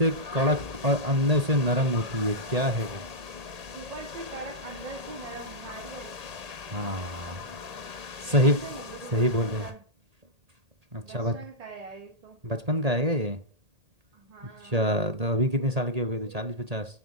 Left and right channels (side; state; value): left; late; 1.8 ms